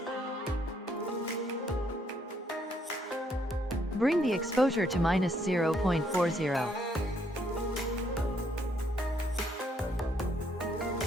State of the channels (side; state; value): both; normal; correlation 0.70